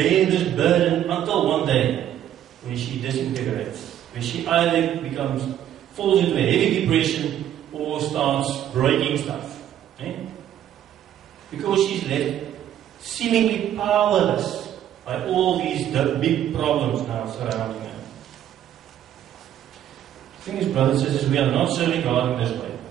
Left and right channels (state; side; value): quieter; left; 11.0 dB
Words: this burden until one day when she disintegrates, when she either falls into a heavy depression or starts breaking stuff. Because she's left seemingly powerless by all these big problems now surrounding her. The thing is, brothers and sisters, we are not serving God in this way.